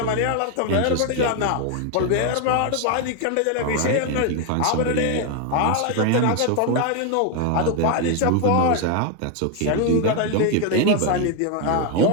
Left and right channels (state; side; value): different; both; correlation 0.01